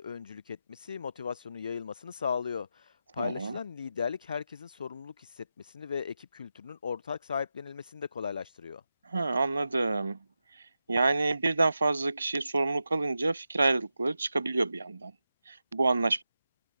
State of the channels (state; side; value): inverted; both; correlation -0.90